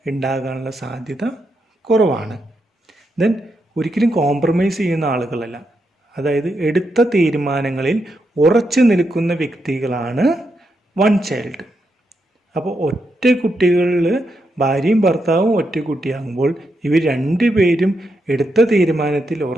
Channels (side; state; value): both; normal; correlation 0.83